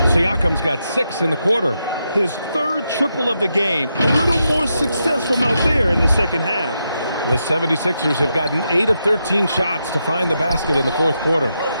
Siakam's got 6 in the quarter. His 3rd triple of the game. A little more success from out there in the 2nd half. The 76ers have gotten 8 of 13 shots to find the basket in the 4th quarter.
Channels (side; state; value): both; inverted; correlation -0.84